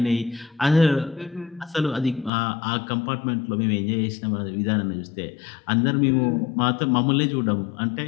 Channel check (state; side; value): drops out; right; at 2.3 s